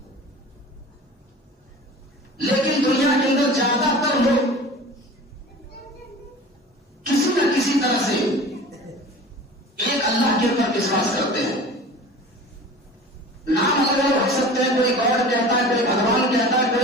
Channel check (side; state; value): both; normal; correlation 0.39